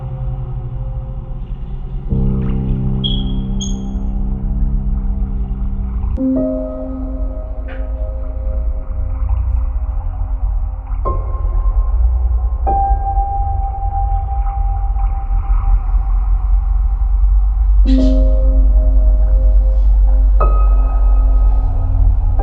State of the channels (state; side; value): identical; both; correlation 1.00